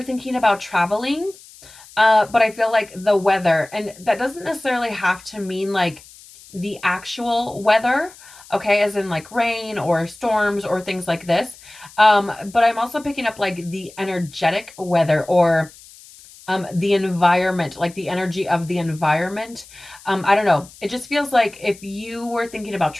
thinking about traveling, but I feel like the weather, and that doesn't necessarily have to mean like the actual weather, okay, as in like rain or storms or things like this. But I'm also picking up like the energetic weather or the environment, like the energy of the environment. I don't know. It just feels like if you were thinking about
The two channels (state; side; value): noise; left; hiss, 21 dB below the sound